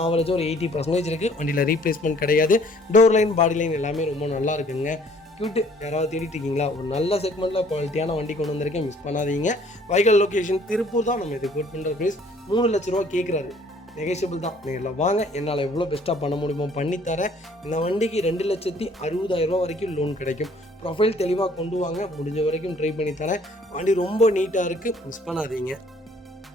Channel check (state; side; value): normal; both; correlation 0.58